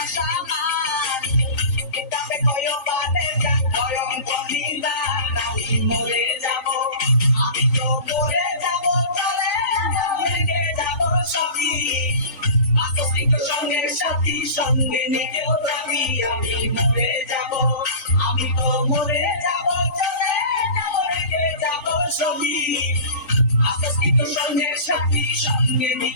সামান কিতাবে কয়ো বাদে মরে যাব আমি তো মরে যাব চলে রেখে যাব সবই আসক্ত সঙ্গের সাথী সঙ্গে নিকেও যাবি আমি মরে যাব আমি তো মরে যাব চলে যাব রেখে যাব সবই আসক্ত সঙ্গের সাথী সঙ্গে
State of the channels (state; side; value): late; right; 3.5 ms